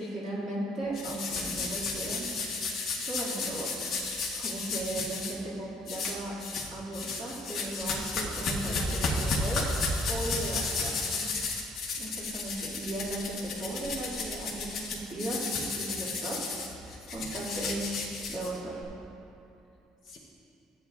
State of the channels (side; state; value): both; normal; correlation 0.62